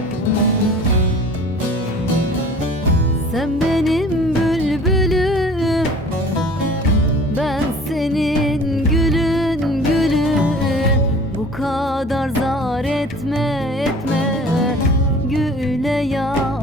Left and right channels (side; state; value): both; normal; correlation 0.46